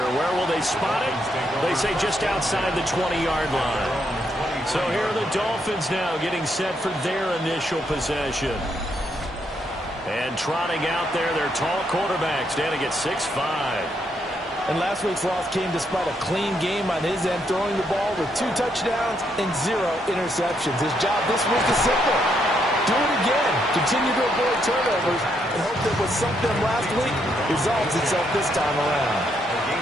Where will they spot it? They say just outside the 20-yard line. So here are the Dolphins now getting set for their initial possession. And trotting out there, their tall quarterback standing at 6'5". And last week's loss came despite a clean game on his end, throwing the ball with 2 touchdowns and 0 interceptions. His job this week is simple. Do it again. Continue to avoid turnovers and hope that what sunk them last week resolves itself this time around. A gain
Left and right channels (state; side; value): normal; both; correlation 0.76